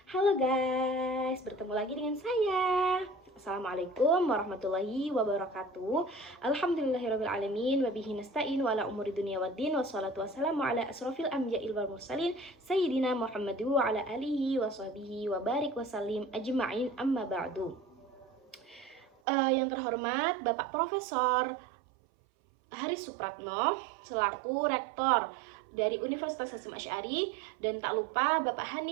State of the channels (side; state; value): left; drops out; at 19.1 s